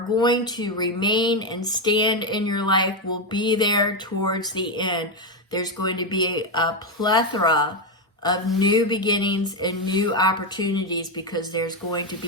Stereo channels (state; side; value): normal; both; correlation 0.08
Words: going to remain and stand in your life will be there towards the end. There's going to be a plethora of new beginnings and new opportunities because there's going to